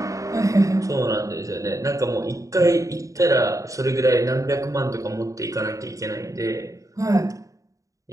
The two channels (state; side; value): late; left; 0.16 ms